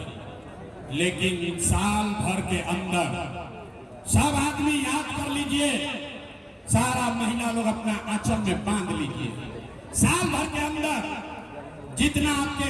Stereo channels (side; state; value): both; identical; correlation 1.00